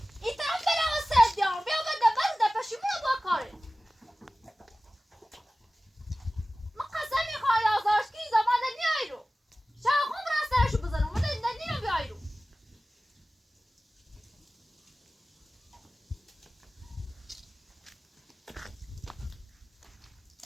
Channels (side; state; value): both; normal; correlation 0.96